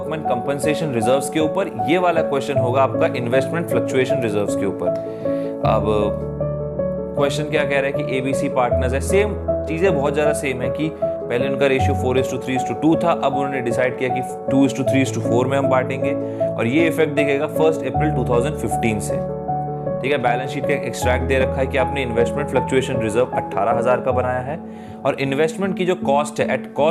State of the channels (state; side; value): identical; both; correlation 1.00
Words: कंपनसेशन रिजर्व्स के ऊपर, ये वाला क्वेश्चन होगा आपका इन्वेस्टमेंट फ्लक्चुएशन रिजर्व्स के ऊपर। अब क्वेश्चन क्या कह रहा है कि एबीसी पार्टनर्स है, सेम चीजें बहुत ज्यादा सेम है कि पहले उनका रेशियो 4:3:2 था, अब उन्होंने डिसाइड किया कि 2:3:4 में हम बांटेंगे, और ये इफेक्ट दिखेगा 1 अप्रैल 2015 से। ठीक है, बैलेंस शीट का एक्सट्रैक्ट दे रखा है कि आपने इन्वेस्टमेंट फ्लक्चुएशन रिजर्व 18,000 का बनाया है, और इन्वेस्टमेंट की जो कॉस्ट है एट